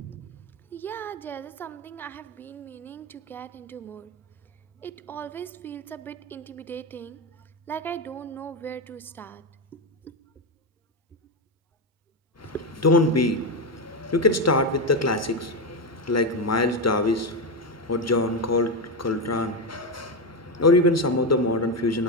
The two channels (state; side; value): normal; both; correlation 0.11